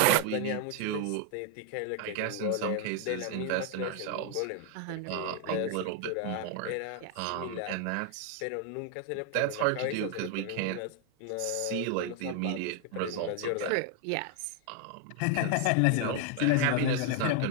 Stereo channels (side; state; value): both; different; correlation 0.00